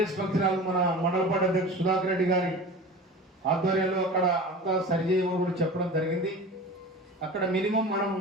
హాల్ మన మండల పార్టీ అధ్యక్షుడు సుధాకర్ రెడ్డి గారి ఆధ్వర్యంలో అక్కడ అంతా సరిచేయమని కూడా చెప్పడం జరిగింది. అక్కడ మినిమం మనం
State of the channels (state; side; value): normal; both; correlation 0.35